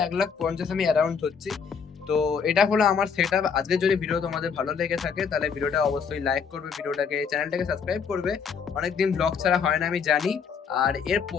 1,50,000 আমি অ্যারাউন্ড হচ্ছি। তো এটা হলো আমার সেট আপ। আজকে যদি ভিডিও তোমাদের ভালো লেগে থাকে তাহলে ভিডিওটা অবশ্যই লাইক করবে, ভিডিওটাকে, চ্যানেলটাকে সাবস্ক্রাইব করবে। অনেকদিন ব্লগ ছাড়া হয় না আমি জানি, আর এর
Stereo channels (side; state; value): right; quieter; 6.3 dB